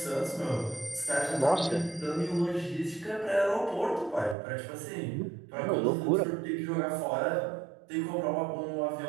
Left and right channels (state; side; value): drops out; left; at 4.4 s